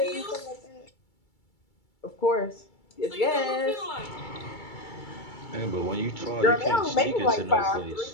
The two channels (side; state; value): right; late; 2.3 ms